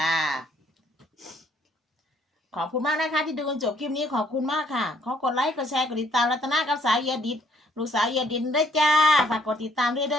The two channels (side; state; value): both; normal; correlation 0.64